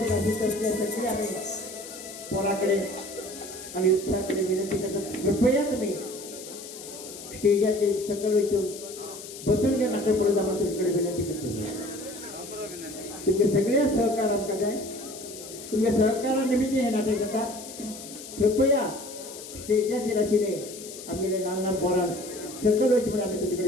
सगळे आम्ही पोराकडे आणि उत्साहाकडे विनंती करतात कृपया तुम्ही स्टेजाचे सकल इथून बसून घ्या नाटक पुढे जाणं तुमच्याकडे विनंती करतो तुमचे सगळे सहकार आमकां जाय तुमच्या सहकारानिमित्त हे नाटक जाता कृपया स्टेजाचेर आशिल्ले आमगेले ल्हान ल्हान पोरांक सकल वयचे म्हणून आमी तुमचे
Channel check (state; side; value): noise; left; hiss, 13 dB below the sound